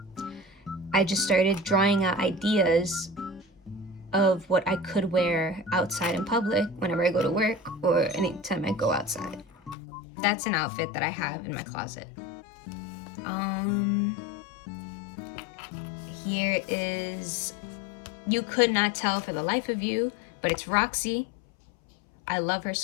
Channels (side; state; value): right; drops out; at 9.8 s